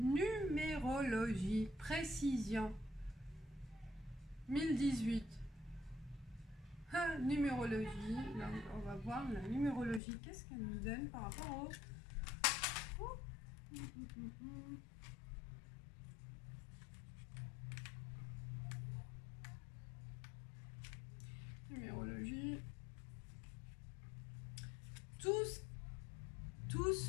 précision, 1018. Numérologie, là, on va voir la numérologie, qu'est-ce qu'elle nous donne par rapport au... Numérologie. Tout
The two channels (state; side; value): drops out; right; at 10.0 s